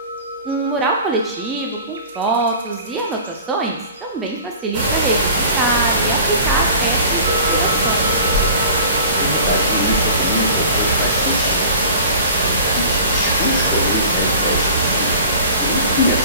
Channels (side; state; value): both; inverted; correlation -0.42